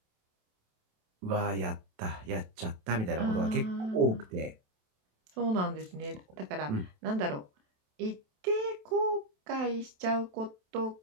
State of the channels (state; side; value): late; left; 27 ms